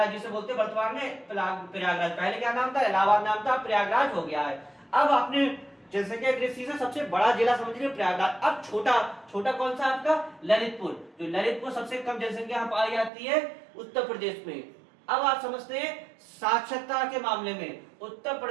जिसे बोलते हैं वर्तमान में प्रयागराज। पहले क्या नाम था? इलाहाबाद नाम था, प्रयागराज हो गया है। अब आपने जनसंख्या की दृष्टि से सबसे बड़ा जिला समझ लिया प्रयागराज। अब छोटा कौन सा आपका? ललितपुर। जो ललितपुर सबसे कम जनसंख्या पाई जाती है उत्तर प्रदेश में। अब आप समझते हैं साक्षरता के मामले में उत्तर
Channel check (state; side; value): drops out; left; at 13.1 s